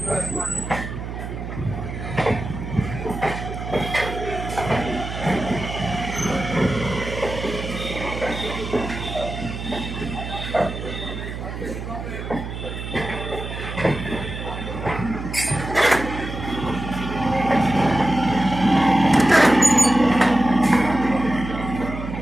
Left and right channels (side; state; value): right; noise; hum, 7 dB below the sound